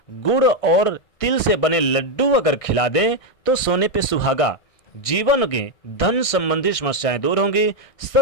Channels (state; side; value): late; right; 1.6 ms